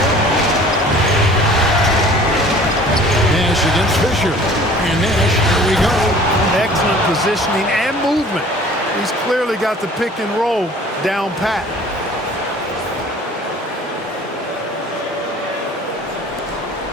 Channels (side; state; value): both; normal; correlation 0.49